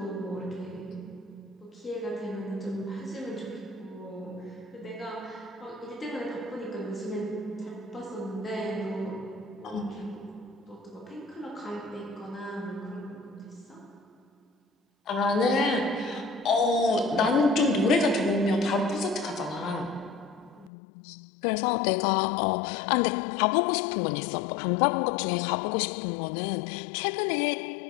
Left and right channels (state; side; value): drops out; right; at 20.7 s